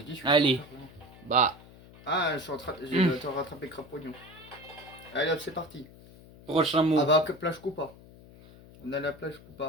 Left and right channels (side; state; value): left; noise; hum, 21 dB below the sound